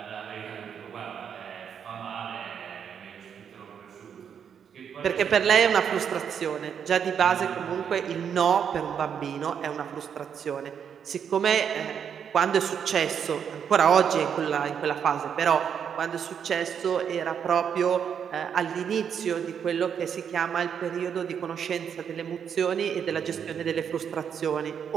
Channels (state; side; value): quieter; left; 7.8 dB